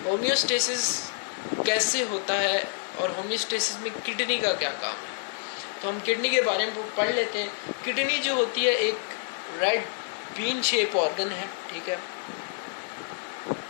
होम्योस्टेसिस कैसे होता है और होम्योस्टेसिस में किडनी का क्या काम है। तो हम किडनी के बारे में पढ़ लेते हैं। किडनी जो होती है एक रेड बीन शेप ऑर्गन है, ठीक है,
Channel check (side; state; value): right; silent; digital silence